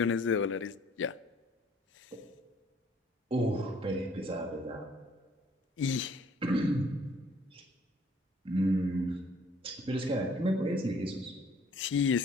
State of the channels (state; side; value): normal; both; correlation 0.58